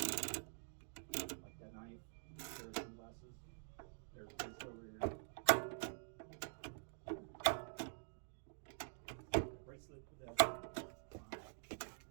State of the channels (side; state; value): left; silent; digital silence